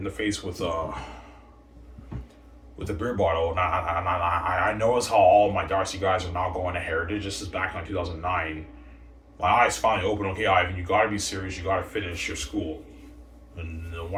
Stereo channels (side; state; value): both; identical; correlation 1.00